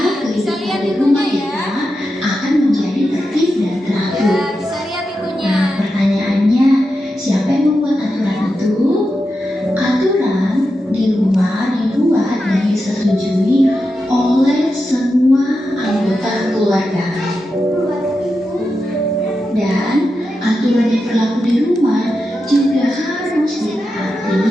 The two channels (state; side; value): normal; both; correlation 0.89